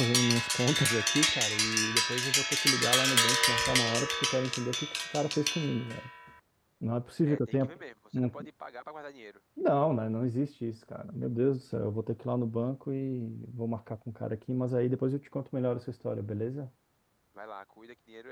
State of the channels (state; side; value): identical; both; correlation 1.00